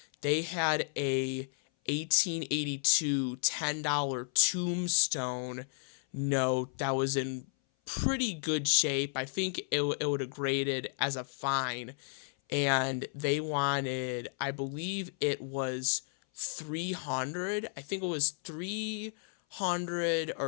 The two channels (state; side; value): silent; right; 56 dB below the other